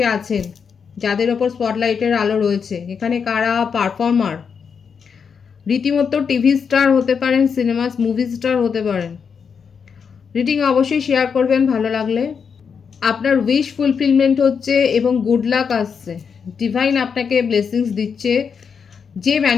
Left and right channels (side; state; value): right; quieter; 6.3 dB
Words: আছেন, যাদের ওপর স্পটলাইটের আলো রয়েছে। এখানে কারা পারফর্মার, রীতিমতো টিভি স্টার হতে পারেন, সিনেমা মুভি স্টার হতে পারেন। রিডিং অবশ্যই শেয়ার করবেন ভালো লাগলে। আপনার উইশ ফুলফিলমেন্ট হচ্ছে এবং গুড লাক আসছে, ডিভাইন আপনাকে ব্লেসিংস দিচ্ছে। যে